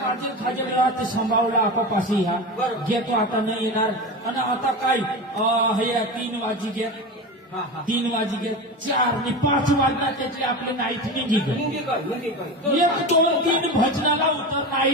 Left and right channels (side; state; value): both; normal; correlation 0.25